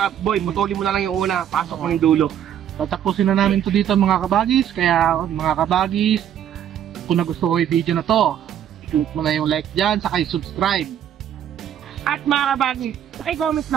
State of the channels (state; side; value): quieter; left; 9.9 dB